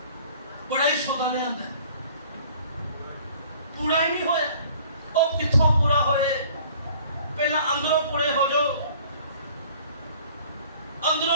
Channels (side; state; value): both; inverted; correlation -0.52